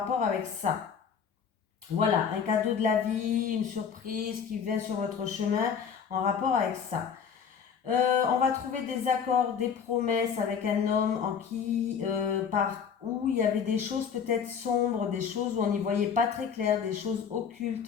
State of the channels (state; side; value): quieter; right; 6.9 dB